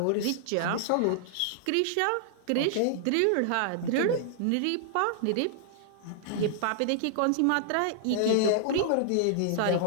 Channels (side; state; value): both; different; correlation -0.01